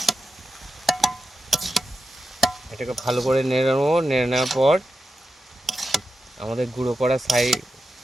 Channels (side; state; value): both; normal; correlation 0.90